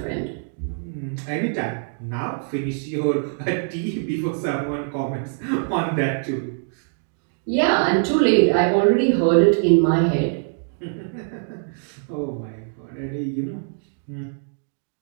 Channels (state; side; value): silent; left; digital silence